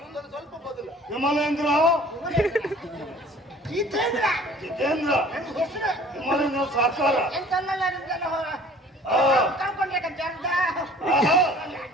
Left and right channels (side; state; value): both; normal; correlation 0.50